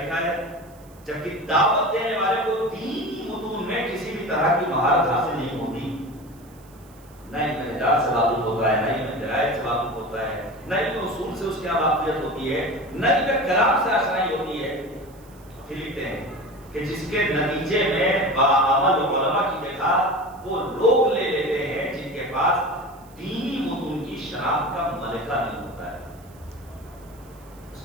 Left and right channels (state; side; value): noise; right; hiss, 27 dB below the sound